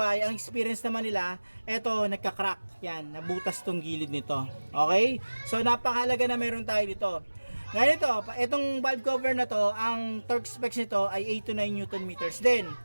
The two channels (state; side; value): inverted; both; correlation -1.00